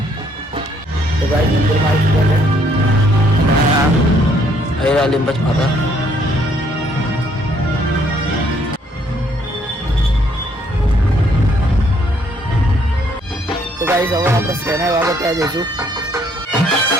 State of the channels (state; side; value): normal; both; correlation 0.67